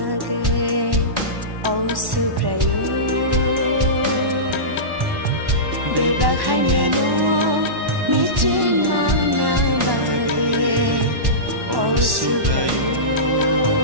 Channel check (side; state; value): left; late; 1.1 ms